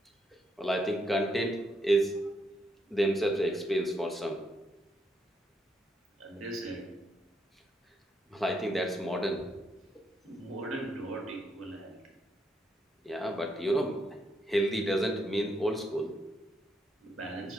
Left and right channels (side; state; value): both; normal; correlation 0.77